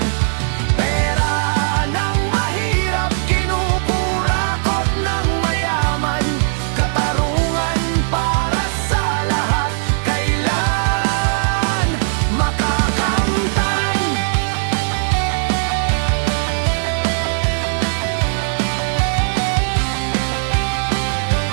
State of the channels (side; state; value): left; silent; digital silence